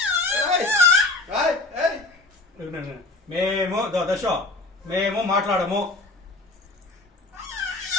మేము దశ మేము మాట్లాడము.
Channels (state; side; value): quieter; right; 3.1 dB